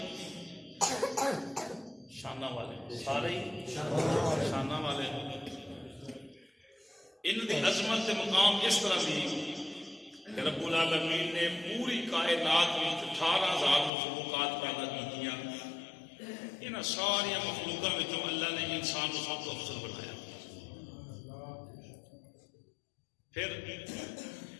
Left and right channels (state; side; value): drops out; right; at 13.9 s